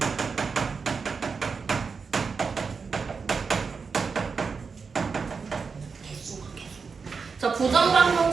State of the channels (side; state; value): left; quieter; 5.2 dB